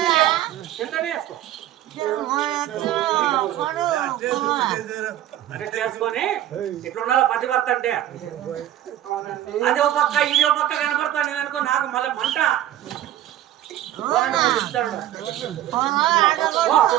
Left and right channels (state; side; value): quieter; left; 12.8 dB